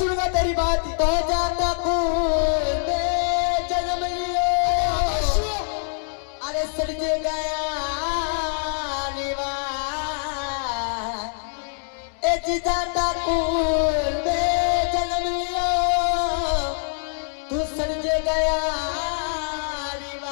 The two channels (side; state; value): right; silent; digital silence